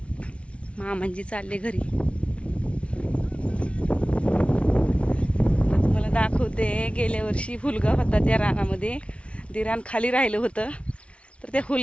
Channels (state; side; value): late; right; 0.061 ms